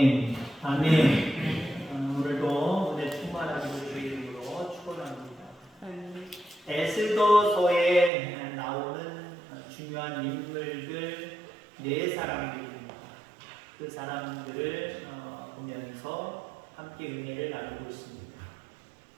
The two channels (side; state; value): left; drops out; at 8.1 s